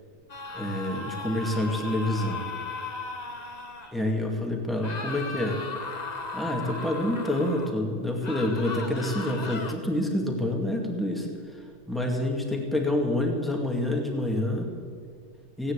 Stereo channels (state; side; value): noise; right; rumble, 29 dB below the sound